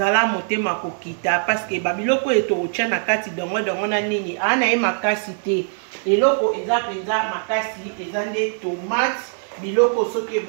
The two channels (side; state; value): left; silent; digital silence